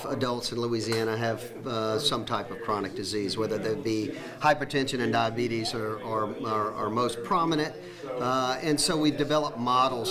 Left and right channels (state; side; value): identical; both; correlation 1.00